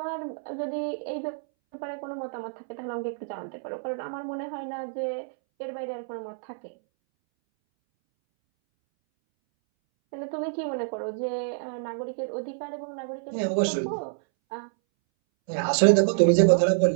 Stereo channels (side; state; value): left; silent; 60 dB below the other